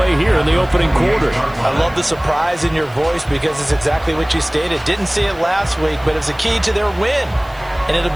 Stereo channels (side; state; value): left; noise; hiss, 26 dB below the sound